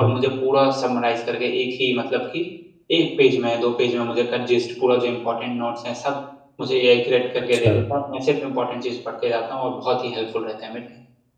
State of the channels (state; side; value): identical; both; correlation 1.00